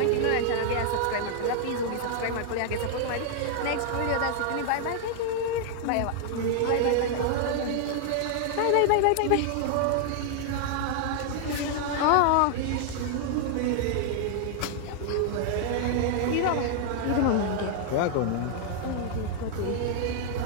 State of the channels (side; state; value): both; different; correlation -0.01